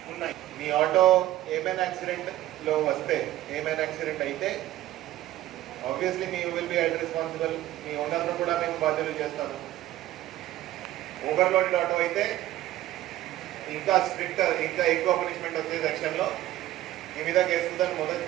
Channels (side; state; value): left; quieter; 14.5 dB